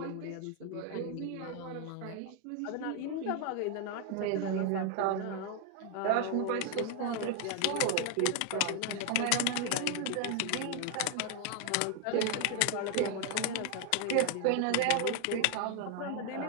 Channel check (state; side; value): different; both; correlation 0.00